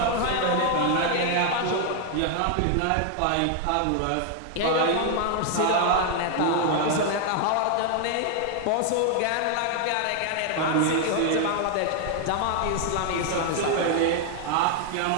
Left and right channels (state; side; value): different; both; correlation 0.00